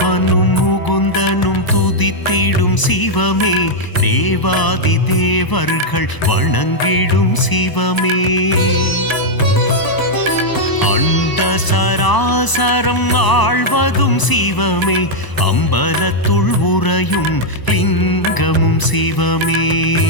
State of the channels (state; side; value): late; right; 1.0 ms